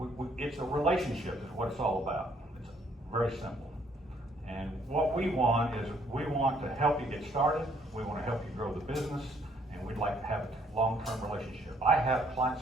it's a relationship is what it's all about. It's very simple. And what we want is we want to help you get started, we want to help you grow the business, and we'd like to have a long-term relationship. I have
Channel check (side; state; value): both; normal; correlation 0.66